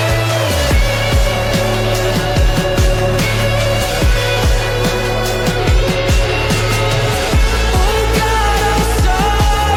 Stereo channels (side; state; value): both; identical; correlation 1.00